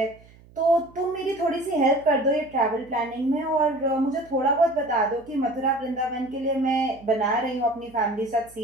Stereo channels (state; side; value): noise; right; hum, 25 dB below the sound